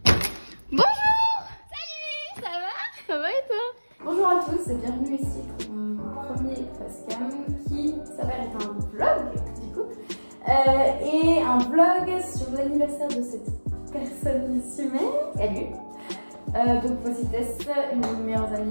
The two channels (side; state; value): both; inverted; correlation -1.00